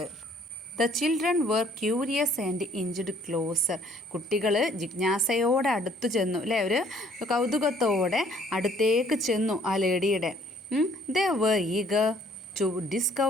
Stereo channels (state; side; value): normal; both; correlation 0.60